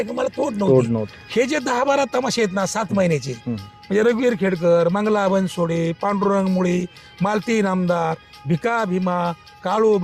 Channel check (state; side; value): identical; both; correlation 1.00